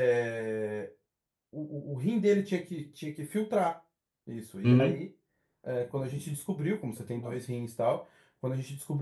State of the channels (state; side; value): identical; both; correlation 1.00